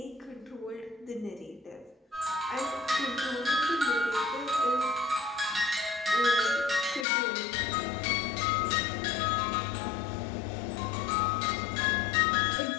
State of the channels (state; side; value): drops out; right; at 7.1 s